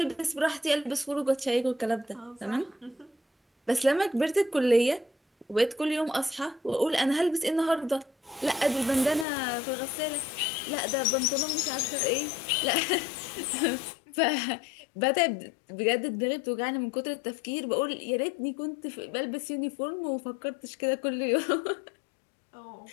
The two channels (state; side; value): drops out; right; at 9.2 s